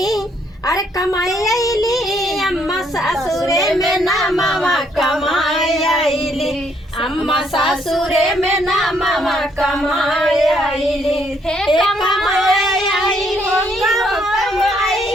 अरे कमाई आईली अम्मा ससुरे में नामवा कमाई आईली, अम्मा ससुरे में नामवा कमाई आईली, हे कमाई आईली, कमाई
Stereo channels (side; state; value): both; normal; correlation 0.70